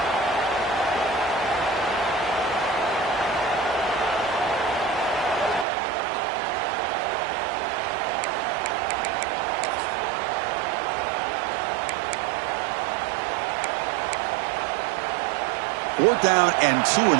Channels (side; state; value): left; drops out; at 5.7 s